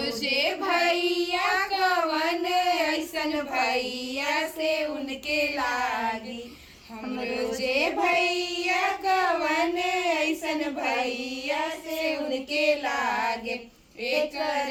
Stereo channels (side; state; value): both; identical; correlation 1.00